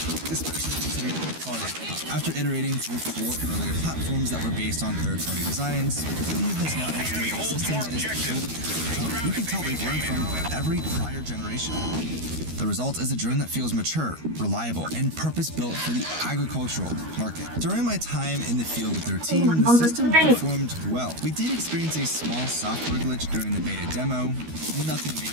especially considering the product. After iterating through 4 earlier platforms that were based on third-party designs, Helio has now integrated a system that is fully. You can tell they've learned from every prior generation. The result is a drone that feels mature, reliable, and purpose-built for the agricultural market. During my time in the field with their team, the system performed well. We did experience a small software glitch during the beta demo. Nothing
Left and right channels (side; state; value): left; late; 13 ms